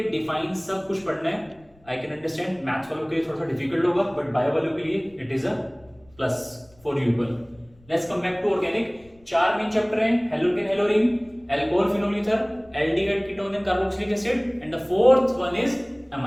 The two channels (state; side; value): noise; left; rumble, 30 dB below the sound